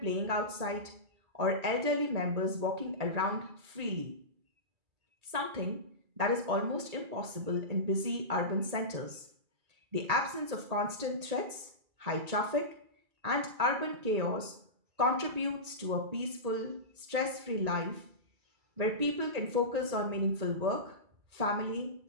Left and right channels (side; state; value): left; late; 2.3 ms